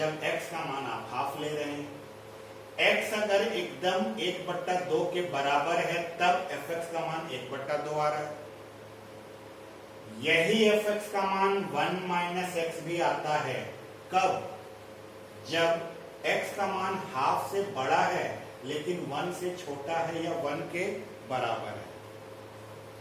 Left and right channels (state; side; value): identical; both; correlation 1.00